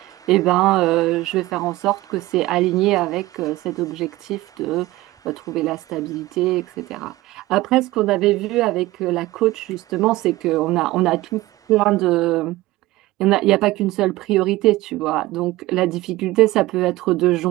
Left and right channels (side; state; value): left; quieter; 18.2 dB